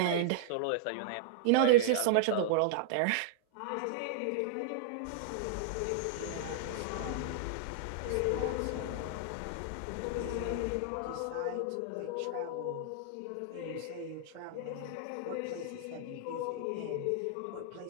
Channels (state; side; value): different; both; correlation -0.01